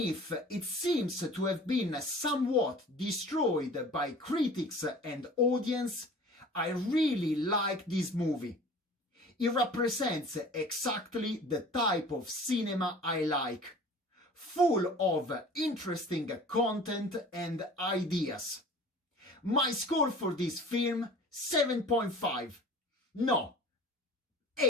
it seems to have been somewhat destroyed by critics and audience, I really like this movie. It represents exactly the type of cinema I like, full of interesting content and ideas. My score for this film, 7.5. No,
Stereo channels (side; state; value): both; normal; correlation 0.44